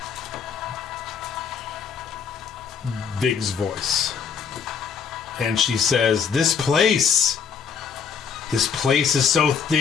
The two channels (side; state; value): right; quieter; 6.7 dB